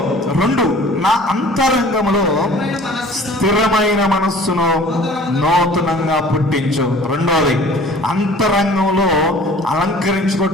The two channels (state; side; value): normal; both; correlation 0.48